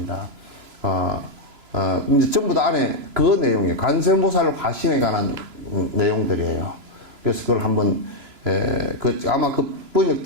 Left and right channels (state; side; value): late; left; 3.0 ms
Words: 이제 전부 다 안에 그 내용이에요. 간세보살 화신에 관한 내용들이에요. 그래서 그걸 한번 아마 그